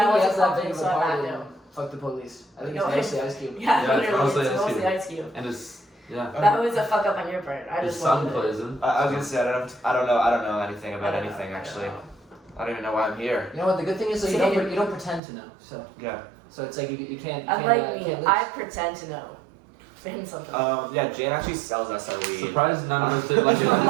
wasn't that confident, big of so a I party, backed though. out. Fuck the police. I think No, it's mostly Ice Cube. Yeah, Yeah, it's literally, mostly it's Ice mostly Cube. Ice Cube. And his yeah. That was a fuck up on your part. I His just son wanted it. plays him. I was gonna say I don't know anything about anything actually. I don't even know why I'm here. You know what? The good thing is that you don't pretend to know. So Yeah. it's like you can't. Unlike me, can't lose. I pretend to know. In something. Yeah, Jane actually sells us our weed. Surprised none of us did like Oh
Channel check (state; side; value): drops out; left; at 15.2 s